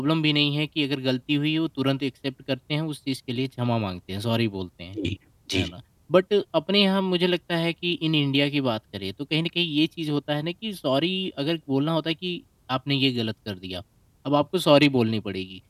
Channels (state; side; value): identical; both; correlation 1.00